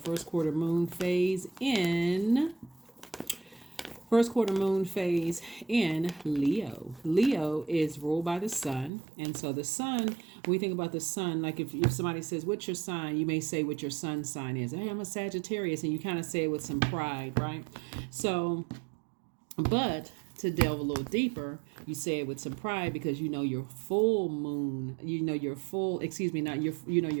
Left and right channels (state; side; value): drops out; left; at 8.9 s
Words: quarter moon phase in Leo. Leo is ruled by the sun. And so the sun, when we think about the sun, like if somebody says, what's your sign? You may say what your sun sign is. Hey, I'm a Sagittarius. And you kind of say it with some pride, right? So, but to delve a little deeper, you say it with some pride because you know your full moon, your full